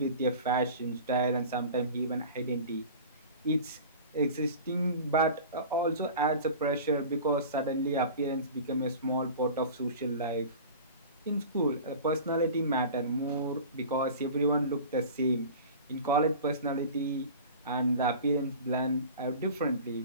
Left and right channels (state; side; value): inverted; both; correlation -0.38